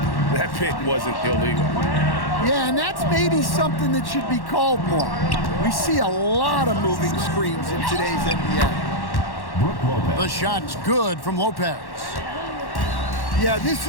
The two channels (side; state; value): right; late; 1.1 ms